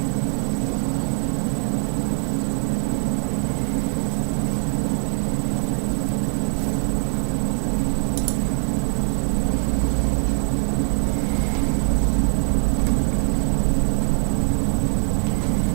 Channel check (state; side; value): silent; left; 64 dB below the other